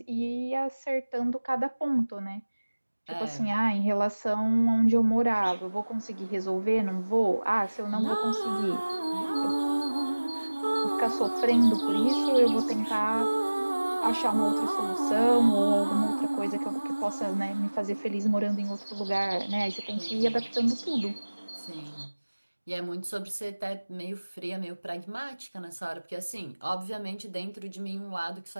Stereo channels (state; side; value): inverted; both; correlation -1.00